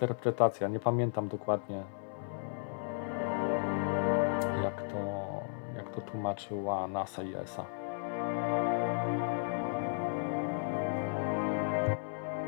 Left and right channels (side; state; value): right; silent; 55 dB below the other